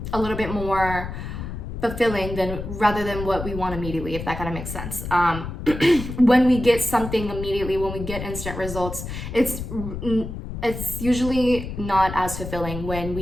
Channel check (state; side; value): noise; left; rumble, 8 dB below the sound